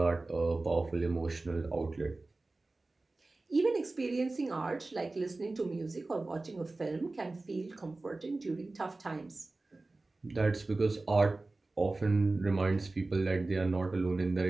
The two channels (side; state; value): left; quieter; 3.2 dB